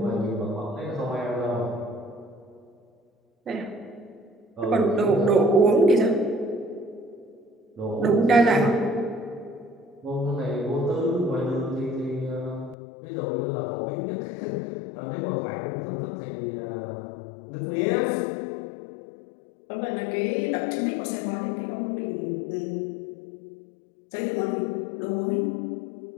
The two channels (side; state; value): right; drops out; at 12.8 s